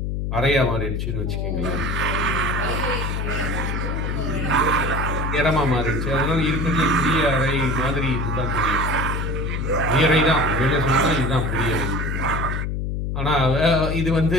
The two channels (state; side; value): noise; left; hum, 1 dB below the sound